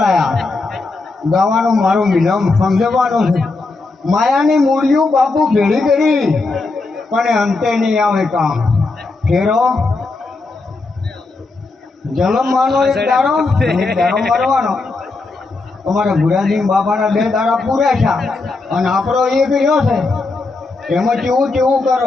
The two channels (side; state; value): right; quieter; 3.6 dB